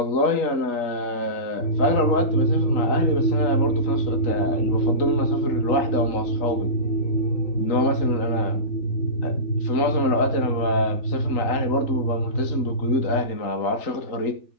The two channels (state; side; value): late; right; 3.8 ms